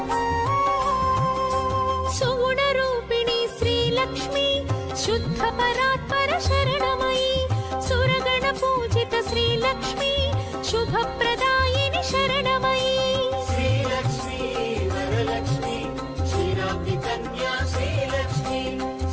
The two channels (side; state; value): both; identical; correlation 1.00